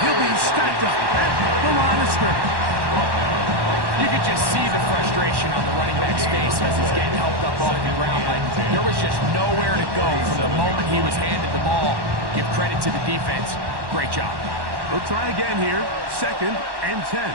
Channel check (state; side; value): late; left; 1.1 ms